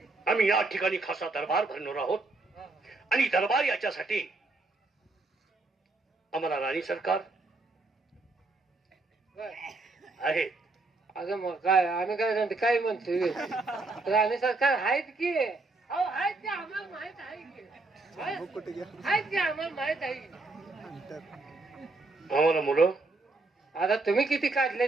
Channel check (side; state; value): left; quieter; 3.3 dB